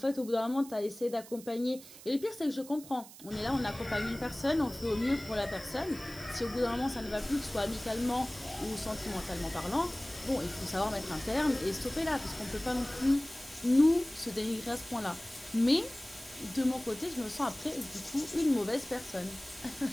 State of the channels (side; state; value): right; noise; hiss, 17 dB below the sound